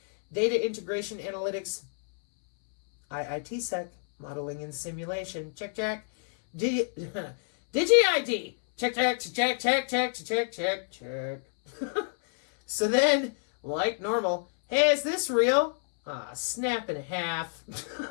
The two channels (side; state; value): right; silent; 59 dB below the other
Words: Data integration analytics, IITsec, modeling and simulation, check, check. Digi-ID, check, check, check, check, check, check, check, check. So then, like normal, hey, is this real? Snap in half.